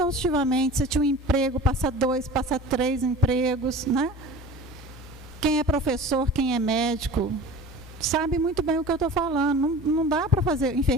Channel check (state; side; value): normal; both; correlation 0.39